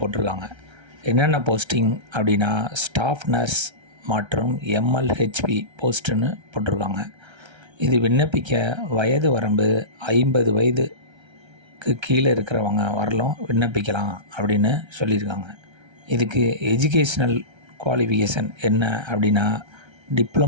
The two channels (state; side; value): late; left; 1.3 ms